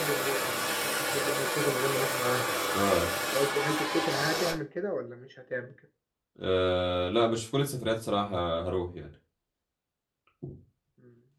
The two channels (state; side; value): identical; both; correlation 1.00